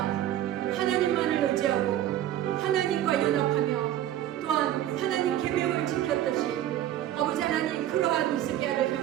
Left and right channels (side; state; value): left; quieter; 12.3 dB